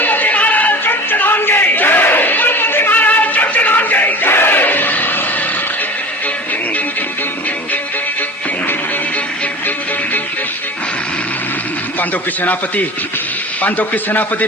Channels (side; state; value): both; normal; correlation 0.36